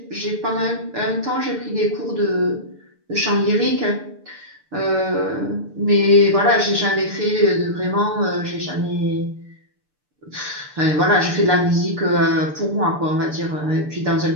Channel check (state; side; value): late; left; 6.8 ms